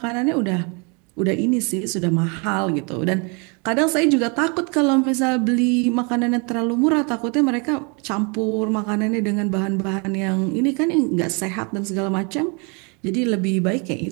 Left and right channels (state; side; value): quieter; left; 33.3 dB